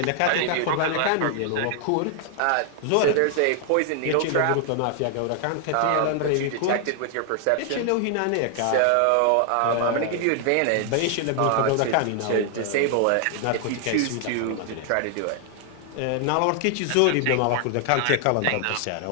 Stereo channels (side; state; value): both; different; correlation 0.00